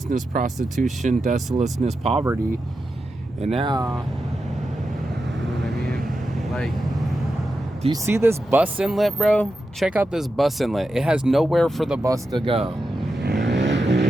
prostitution, desolateness, poverty. And now, you know what I mean? Like, do you see this bus inlet, bro? Check out this bus inlet. It has nowhere for the bus to go.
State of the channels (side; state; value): both; normal; correlation 0.89